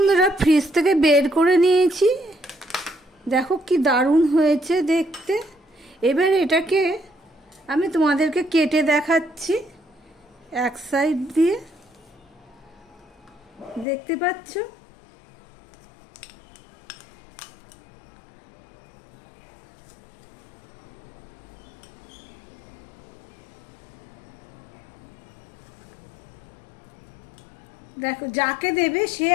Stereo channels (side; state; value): right; drops out; at 13.9 s